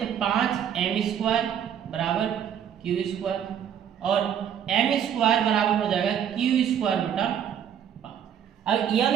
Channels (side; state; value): left; quieter; 9.0 dB